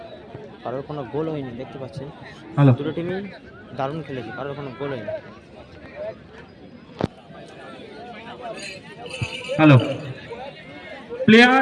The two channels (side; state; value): both; identical; correlation 1.00